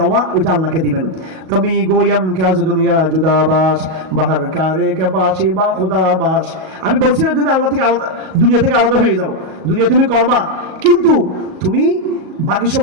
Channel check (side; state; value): left; late; 38 ms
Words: ওইটা আল্লাহকে দিবেন। তুমি গোয়াম কাজ দুনিয়া জুদাবাস বাহার কারে কে বাসি বা খুদাবাস। আমি বলছি না তুমি আল্লাহ থেকে আলাদা, দুনিয়া থেকে আলাদা হয়ে যাও, দুনিয়া তুমি করবা, কিন্তু তুমি বাকি